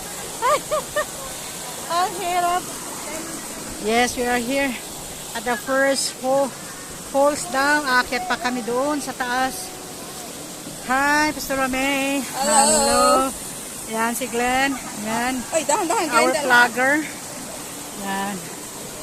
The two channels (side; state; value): both; identical; correlation 1.00